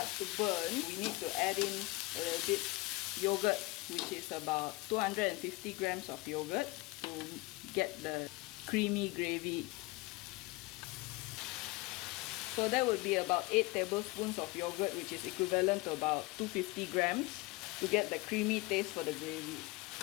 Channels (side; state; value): right; quieter; 22.9 dB